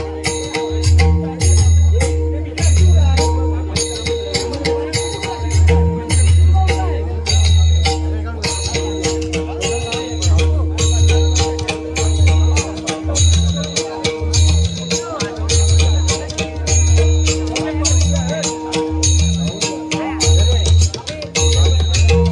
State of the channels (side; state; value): both; identical; correlation 1.00